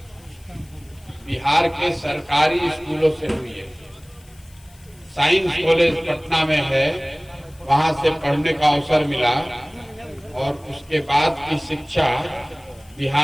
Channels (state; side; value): noise; left; hiss, 28 dB below the sound